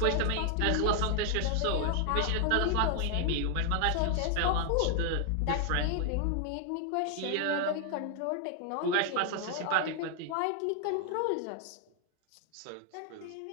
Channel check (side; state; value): both; different; correlation 0.00